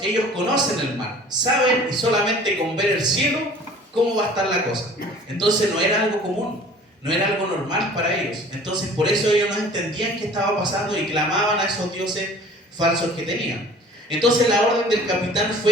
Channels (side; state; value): both; normal; correlation 0.48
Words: ellos conocen el mar, saben, y solamente con ver el cielo cómo va a estar la cosa. Entonces no era algo común. no era algo normal para ellos. Entonces por eso ellos no entendían qué estaba pasando y clamaban a esos dioses falsos que tenían. Entonces la orden del capitán